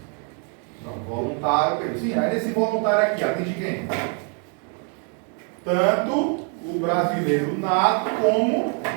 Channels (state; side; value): quieter; left; 39.7 dB